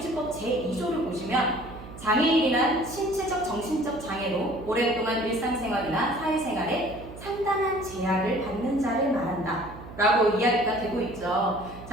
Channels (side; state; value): right; noise; hum, 15 dB below the sound